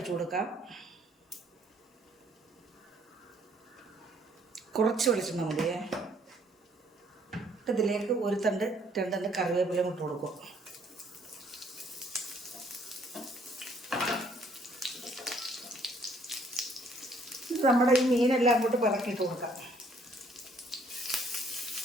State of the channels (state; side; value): normal; both; correlation 0.64